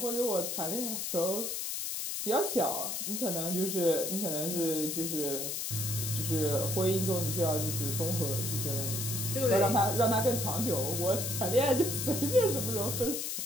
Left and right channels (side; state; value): left; noise; hiss, 2 dB below the sound